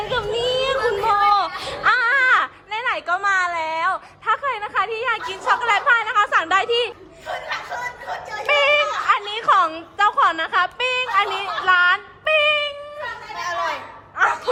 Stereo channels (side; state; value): both; identical; correlation 1.00